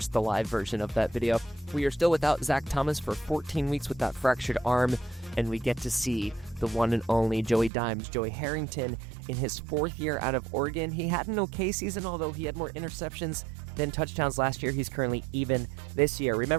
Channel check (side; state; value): left; drops out; at 7.7 s